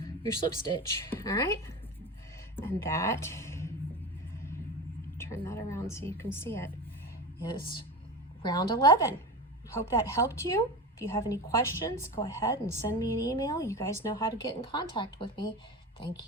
your slip stitch. All right, and that, turn that around so you can see it, is round 11. Hope that helped you. If you have any questions, go ahead and send me an email. You guys know how to get in contact with me.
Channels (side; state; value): both; normal; correlation 0.27